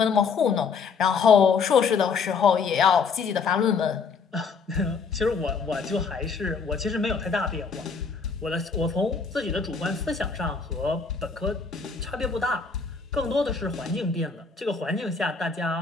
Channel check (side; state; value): right; quieter; 5.3 dB